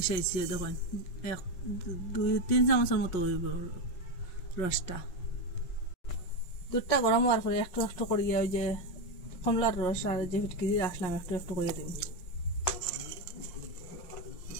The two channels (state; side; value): late; right; 5.4 ms